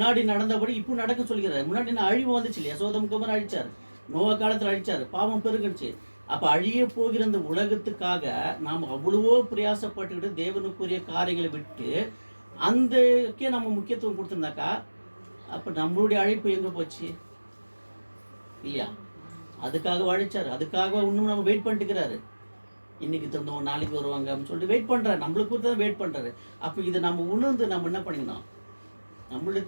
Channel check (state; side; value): inverted; both; correlation -1.00